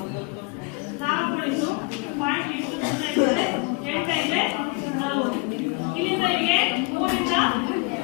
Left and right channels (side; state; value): right; quieter; 27.4 dB